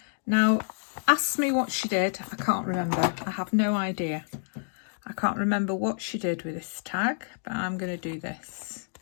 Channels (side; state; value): right; silent; digital silence